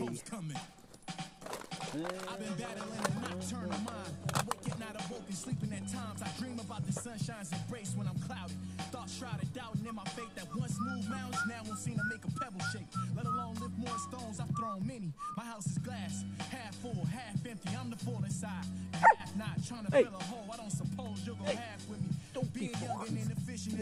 coming. I've been battling a nocturnal mind. I wake at night, awoken, sleeping at times. I dream about the sunshine's embrace when I'm cloudy. Thoughts shrouded, doubting in my faith that once moved mountains, now won't seem to make a pebble shake. Let alone lift more stones, I've thrown many. My house is glass, half full, half empty. I'm the full inside, half not. Trying to fill a hole, I don't suppose you'll go half with me. Don't be young and inefficient.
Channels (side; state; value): both; identical; correlation 1.00